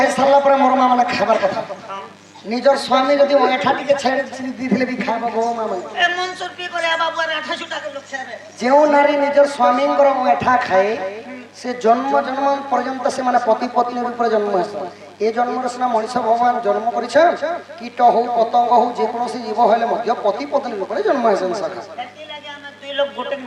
সারলা পরে মোর মা মানে খাবার কথা নিজের স্বামী যদি ওঠা টিকে ছেড়ে দিলে বি খাইব গো মা মানে এ মনসুর পি করে বাবু আর 28 টাকা লোক খাবে যেও নারী নিজের স্বামীঙ্কর ওঠা খায় সে জন্ম পর্যন্ত সে মানে পতি পত্নীর উপরে জন্ম হয়েছে এই জন্মরে সিনা মনিষ ভগবান জন্ম করেছে কীট হোক পতঙ্গ হোক যে কোনসি জীব হলে মধ্য পতি পত্নীর উপরে জন্ম হয়েছে সখা এতি লাগে আমরা দুই লোক গোটে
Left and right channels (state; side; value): identical; both; correlation 1.00